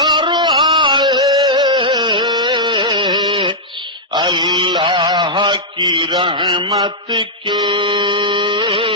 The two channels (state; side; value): normal; both; correlation -0.08